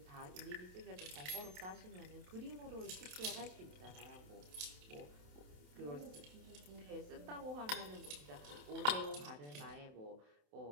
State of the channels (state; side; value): late; left; 27 ms